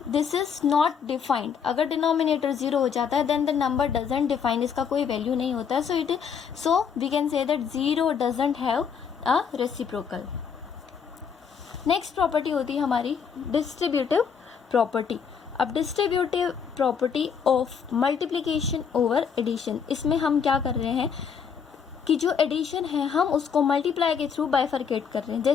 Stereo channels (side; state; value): right; quieter; 6.8 dB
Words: this is not defined. अगर डिनोमिनेटर 0 हो जाता है then the number doesn't define, इसका कोई वैल्यू नहीं होता है. So we can say that 0 doesn't have a reciprocal. Next property होती है हमारी डिस्ट्रीब्यूटिव प्रॉपर्टी. अब distributive property of multiplication over addition, इसमें हम क्या कर रहे हैं कि जो एडिशन है हम उसको मल्टीप्लाई के थ्रू बाइफरकेट कर रहे हैं.